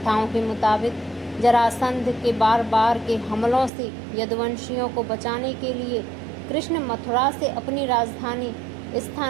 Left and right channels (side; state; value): left; drops out; at 3.7 s